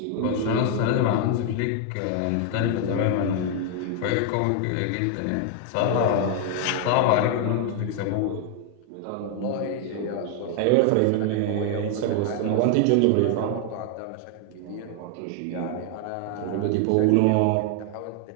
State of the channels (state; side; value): different; both; correlation 0.00